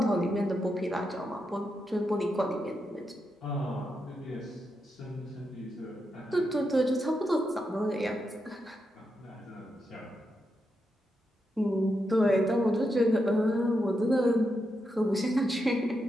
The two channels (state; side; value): normal; both; correlation 0.85